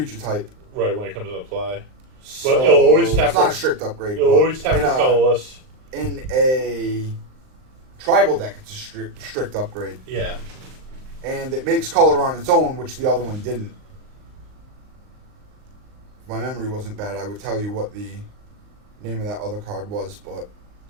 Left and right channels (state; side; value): late; left; 39 ms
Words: type. Right, when it comes into play. So But it'll always tap it's not a strict upgrade. It'll but always tap for colorless. In a tribal deck, it's a strict upgrade. Yeah. And it makes color on its own, which the other one didn't. If my memory wasn't bad, I would tell you what the name of that other card was, but